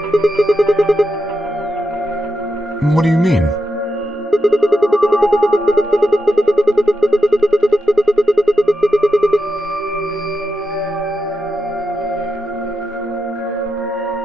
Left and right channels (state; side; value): normal; both; correlation 0.88